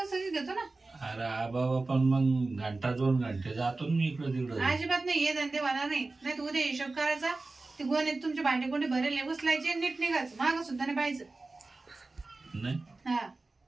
घेतो ना. अरे बाबा पण मग घंटा 2 घंटे जातो मी इकडं तिकडं. अजिबात नाही, हे धंदे होणार नाही. नाही तू उद्या हिशोब करायचा, ते गोणीत तुमचे भांडे कोंडे भरेले उचलायचे, नीट निघायचं, माग सुद्धा नाही पाहिजे. नाही हा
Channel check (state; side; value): quieter; left; 3.4 dB